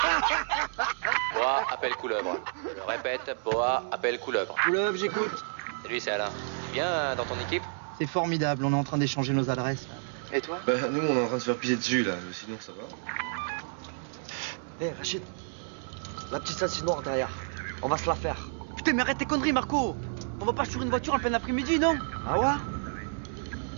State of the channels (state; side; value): silent; left; digital silence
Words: Boa appelle couleuvre. Je répète, Boa appelle couleuvre. Couleuvre, j'écoute. Salut, c'est Alain. Tu viens dans ton équipe? C'est formidable, on est en train d'échanger nos adresses, là. Et toi? Bah, nous, on est en train de se faire piser dessus, là. Mais sinon, ça va. Hé, Rachid. La petite ceinture noire derrière. On va se la faire. Putain, mais arrête tes conneries, Marco. On va pas sur une voiture en plein après-midi, non? Ah ouais?